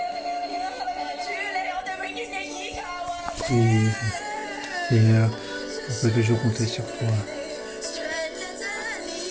Oui, Seigneur, on peut toujours compter sur toi.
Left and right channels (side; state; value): both; identical; correlation 1.00